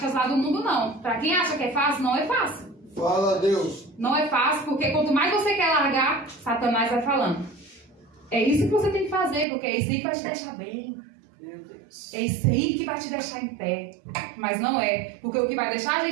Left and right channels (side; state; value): left; drops out; at 9.5 s